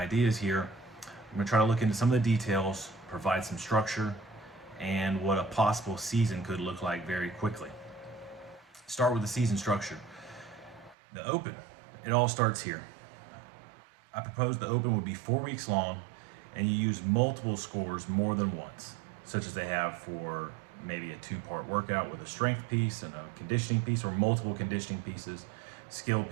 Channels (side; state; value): left; drops out; at 11.0 s